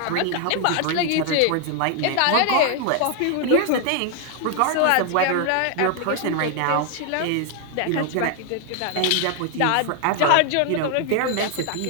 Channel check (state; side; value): different; both; correlation 0.00